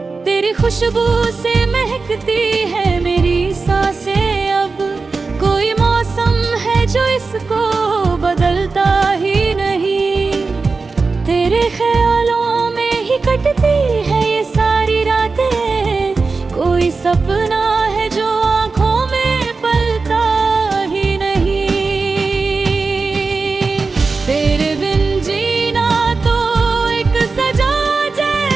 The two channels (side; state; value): left; quieter; 4.2 dB